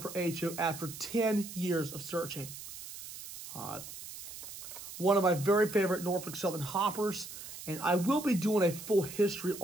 for HO after 10 years of searching. One of my very favorite Norfolk Southern hoppers, and I will be doing a full history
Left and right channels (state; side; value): noise; right; hiss, 12 dB below the sound